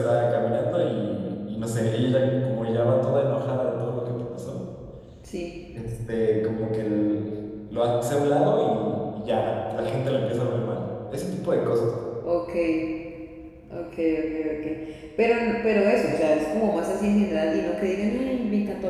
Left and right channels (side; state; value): both; identical; correlation 1.00